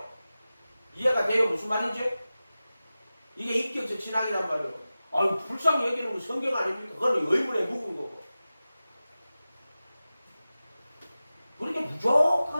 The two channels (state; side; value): inverted; both; correlation -0.95